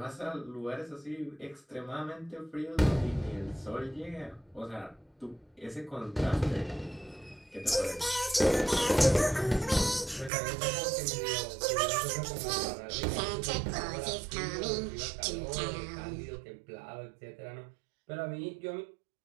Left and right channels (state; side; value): drops out; left; at 10.3 s